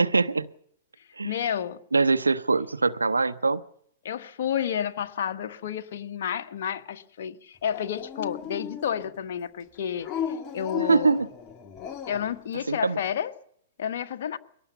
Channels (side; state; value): both; inverted; correlation -0.72